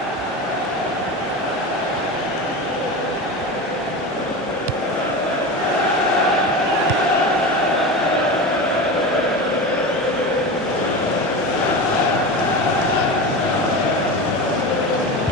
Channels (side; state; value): both; normal; correlation 0.25